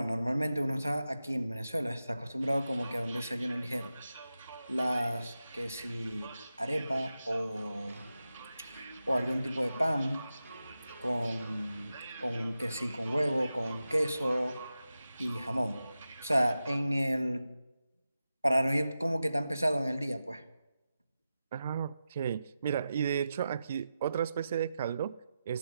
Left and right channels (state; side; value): inverted; both; correlation -0.91